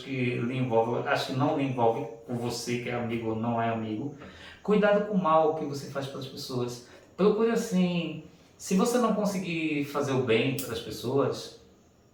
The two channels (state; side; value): identical; both; correlation 1.00